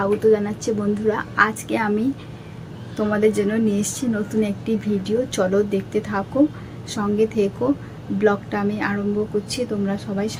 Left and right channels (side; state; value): both; identical; correlation 1.00